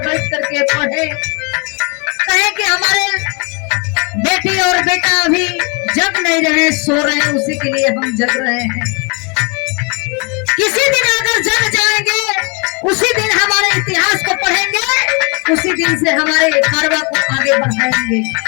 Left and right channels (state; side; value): quieter; right; 32.7 dB